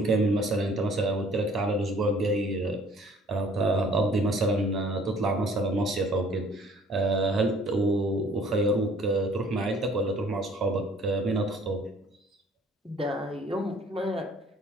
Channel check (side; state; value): both; normal; correlation 0.56